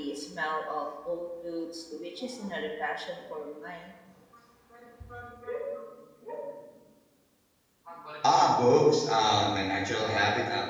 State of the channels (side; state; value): both; identical; correlation 1.00